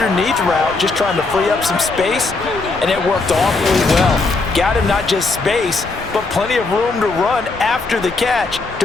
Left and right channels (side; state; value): right; quieter; 3.6 dB